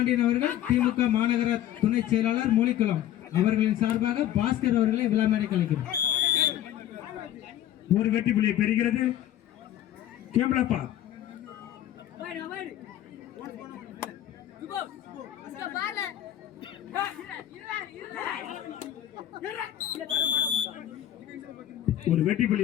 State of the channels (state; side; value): quieter; right; 12.0 dB